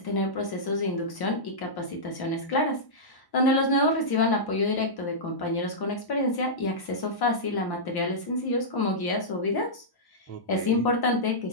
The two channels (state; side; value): late; right; 1.1 ms